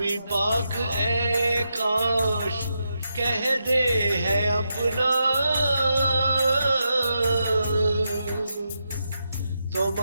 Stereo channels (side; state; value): both; inverted; correlation -0.85